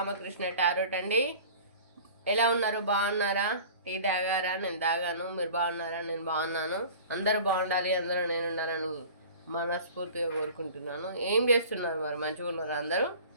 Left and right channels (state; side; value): inverted; both; correlation -0.42